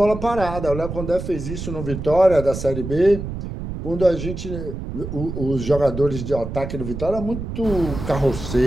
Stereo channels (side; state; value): right; noise; rumble, 7 dB below the sound